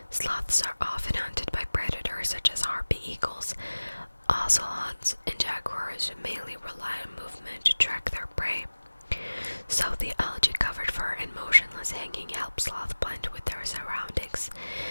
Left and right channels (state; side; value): inverted; both; correlation -1.00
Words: Sloths are often hunted by predators such as harpy eagles, ocelots, and jaguars, who mainly rely on movement to track their prey. So the algae-covered fur and motionless hanging help sloths blend with their surroundings,